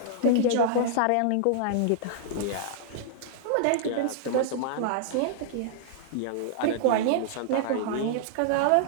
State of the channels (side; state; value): both; different; correlation -0.01